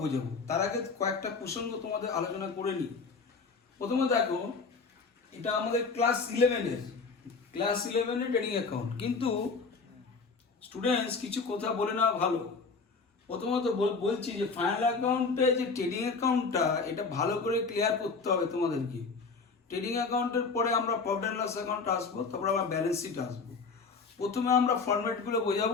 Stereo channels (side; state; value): right; quieter; 4.6 dB